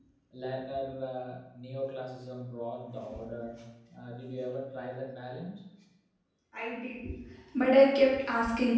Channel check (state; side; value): identical; both; correlation 1.00